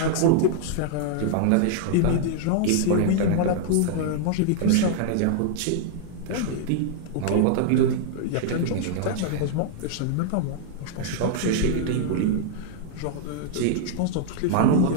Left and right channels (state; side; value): different; both; correlation -0.01